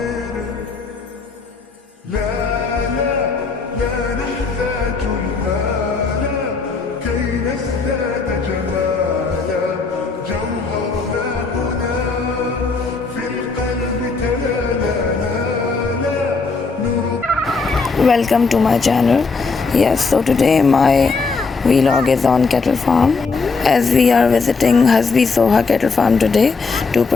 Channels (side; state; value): right; quieter; 4.4 dB